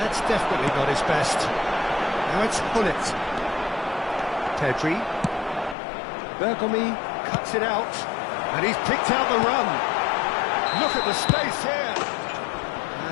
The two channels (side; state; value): right; drops out; at 5.8 s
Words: that's definitely not his best. Now it's Hullet. Pedri. Bergomi cuts it out. And he's picked out the run. Look at the space here.